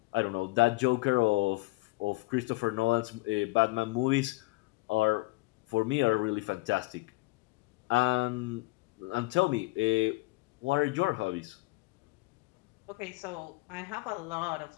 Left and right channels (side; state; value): right; quieter; 23.0 dB